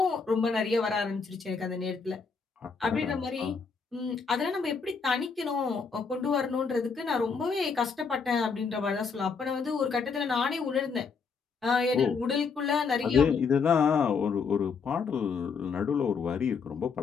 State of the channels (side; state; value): right; quieter; 5.3 dB